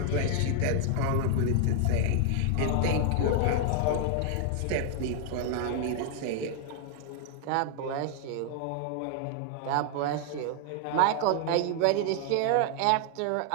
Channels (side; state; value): both; different; correlation 0.00